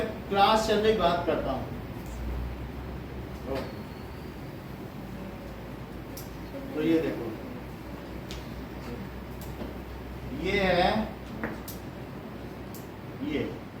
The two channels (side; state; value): both; identical; correlation 1.00